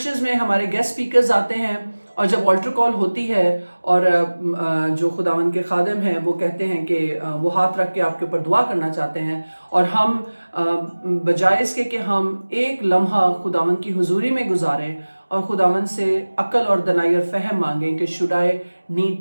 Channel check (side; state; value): both; inverted; correlation -1.00